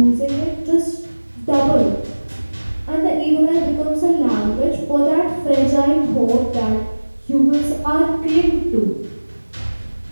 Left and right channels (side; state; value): both; inverted; correlation -1.00